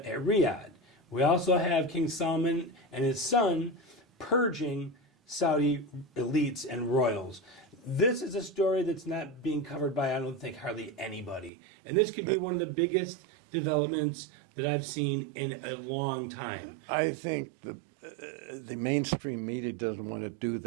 at Riyadh. We also have King Salmon and his son purging Saudi elites and royals. This is a story that's not being covered by, I don't think, hardly anybody. And this could be one of the biggest developments that I've seen in a long time. I think the mainstream media doesn't want to do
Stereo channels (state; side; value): drops out; left; at 11.5 s